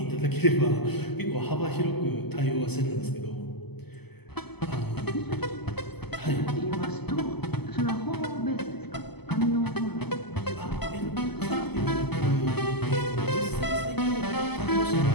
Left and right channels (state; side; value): late; right; 0.98 ms